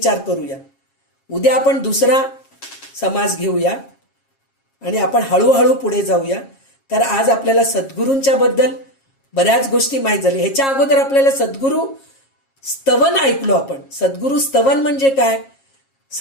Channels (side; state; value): right; late; 7.4 ms